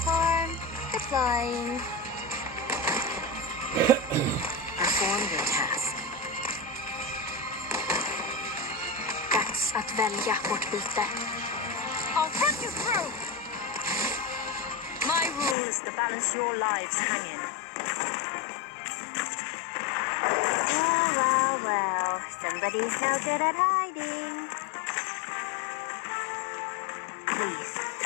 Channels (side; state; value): right; drops out; at 15.6 s